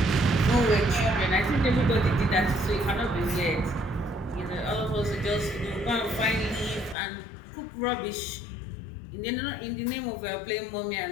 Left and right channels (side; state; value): right; drops out; at 7.0 s